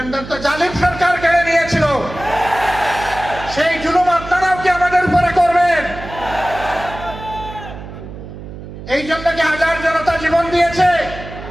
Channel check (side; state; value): right; noise; hum, 13 dB below the sound